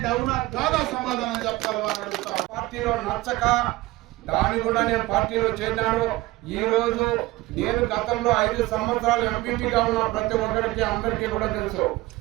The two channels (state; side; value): quieter; left; 19.3 dB